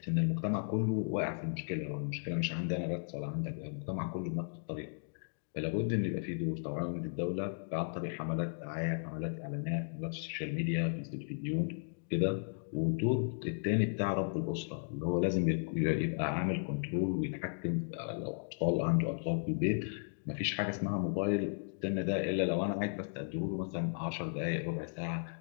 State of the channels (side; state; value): right; silent; digital silence